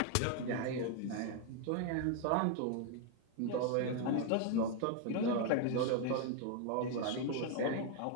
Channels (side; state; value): both; different; correlation 0.01